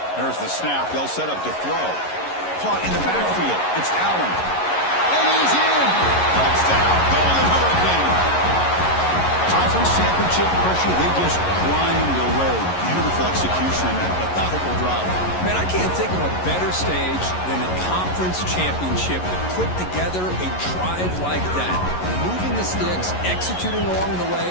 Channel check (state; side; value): late; right; 11 ms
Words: There's the snap. They'll set up to throw. Caught in the backfield. It's Allen. And he's in. Touchdown. Golden Hurricane. Conference championship pressure, they just grind away. Beautiful execution and that methodical drive. Man, I can't think of a better stage than a conference championship to put together a drive like that. Moving the sticks, executing along the way,